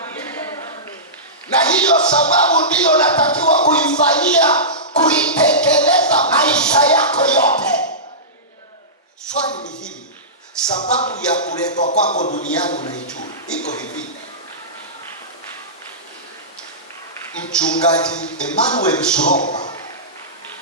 Na hiyo sababu ndiyo natakiwa kuifanyia, kuitekeleza maisha yako yote. Swali ni hili, sababu ya kuletwa kwako duniani unaijua? Iko hivi. Mchungaji Emmanuel Shuromba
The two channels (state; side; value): normal; both; correlation -0.19